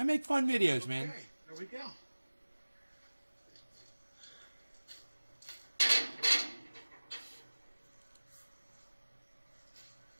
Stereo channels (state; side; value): inverted; both; correlation -1.00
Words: make fun videos, man. Okay, there we go.